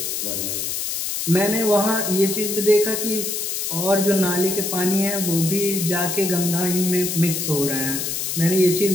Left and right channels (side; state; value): left; noise; hiss, 2 dB below the sound